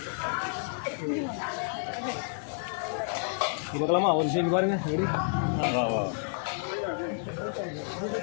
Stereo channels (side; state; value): right; silent; digital silence